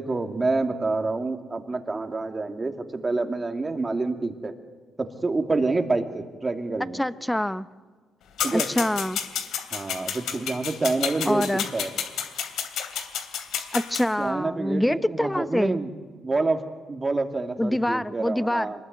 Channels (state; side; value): normal; both; correlation 0.91